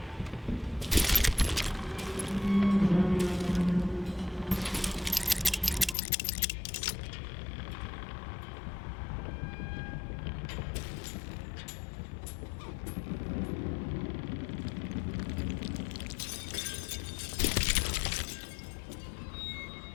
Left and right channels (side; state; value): right; drops out; at 6.0 s